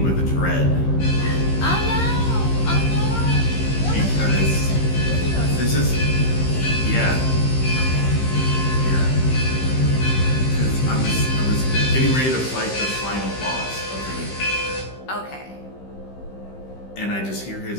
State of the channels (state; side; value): late; right; 15 ms